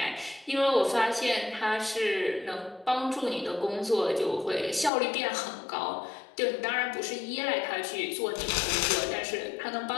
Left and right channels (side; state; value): right; drops out; at 4.9 s